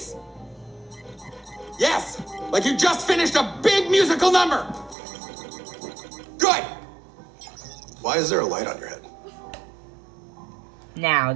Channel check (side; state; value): left; drops out; at 5.0 s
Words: Yes, like you just finished a big musical number. Good. Why is there a light on your head? Now,